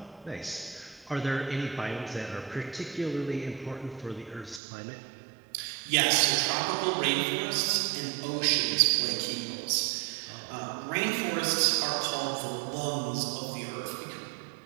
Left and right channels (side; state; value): left; drops out; at 4.6 s